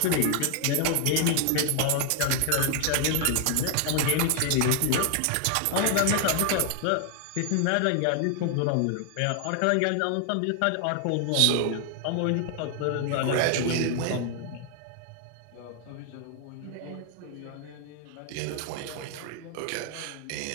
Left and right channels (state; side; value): different; both; correlation 0.00